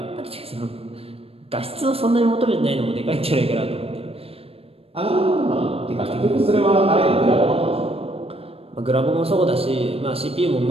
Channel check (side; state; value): left; late; 0.28 ms